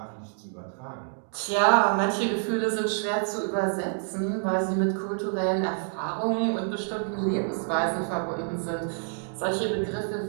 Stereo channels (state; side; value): silent; left; 57 dB below the other